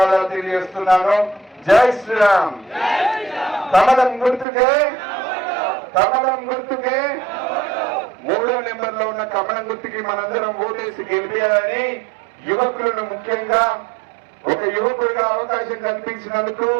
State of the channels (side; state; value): left; drops out; at 4.5 s